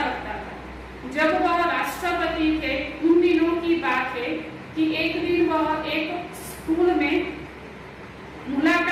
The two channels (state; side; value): identical; both; correlation 1.00